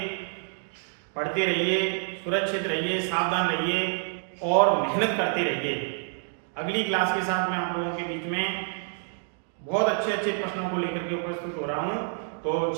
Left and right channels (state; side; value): silent; left; 60 dB below the other